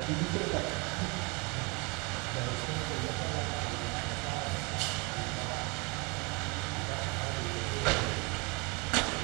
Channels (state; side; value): quieter; left; 29.4 dB